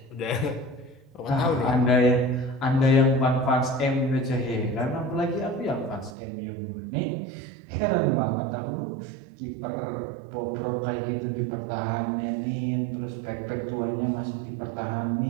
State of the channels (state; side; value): drops out; left; at 6.2 s